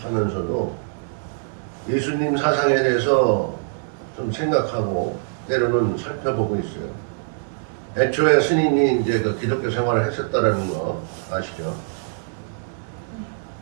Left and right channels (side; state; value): left; silent; digital silence